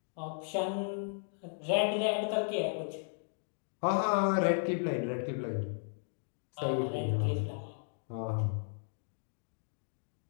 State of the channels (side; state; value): right; silent; digital silence